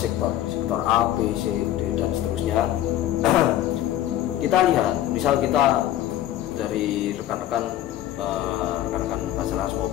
A, B, C, D dan seterusnya. Kita lihat, misal kita dari rekan-rekan Basarnas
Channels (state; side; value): quieter; right; 12.8 dB